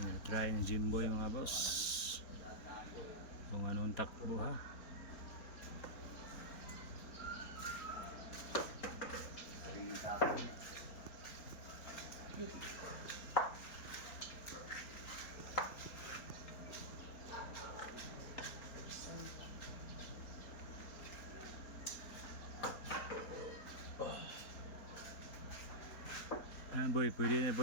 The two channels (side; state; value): right; late; 4.2 ms